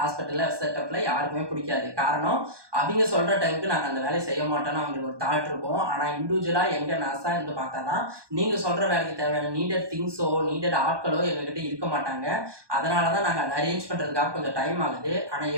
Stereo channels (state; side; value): late; left; 1.2 ms